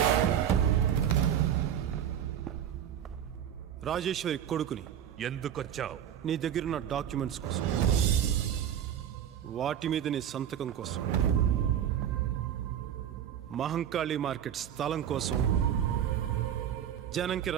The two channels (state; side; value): quieter; left; 9.8 dB